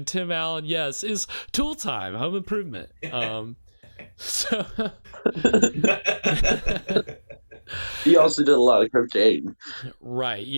Tim Allen, yes, is Tool Time, Home Improvement. So he also did a lot of cocaine. Right,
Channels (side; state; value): both; inverted; correlation -1.00